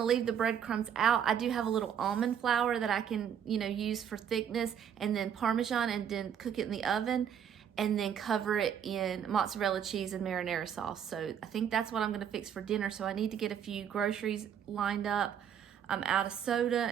leave the breadcrumbs out. I do have a little almond flour that I can, use for thickness, and then Parmesan, and then cook it in the oven, and then cover it in mozzarella cheese and marinara sauce. So I think that's what I'm going to fix for dinner. So I need to get a few groceries lined up. I'm out of soda,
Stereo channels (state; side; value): quieter; left; 8.6 dB